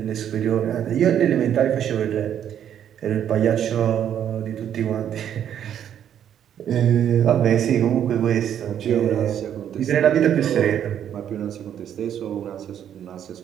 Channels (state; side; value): quieter; left; 9.7 dB